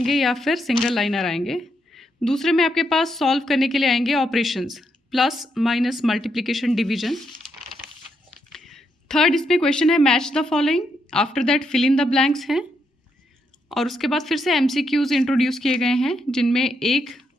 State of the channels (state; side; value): normal; both; correlation 0.79